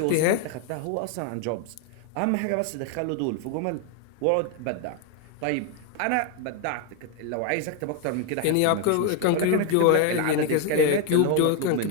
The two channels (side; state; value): both; different; correlation 0.01